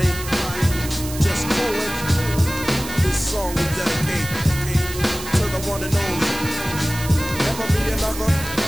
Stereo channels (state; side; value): noise; right; hiss, 11 dB below the sound